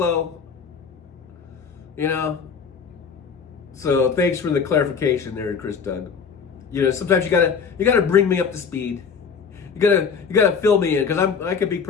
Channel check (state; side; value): quieter; right; 6.1 dB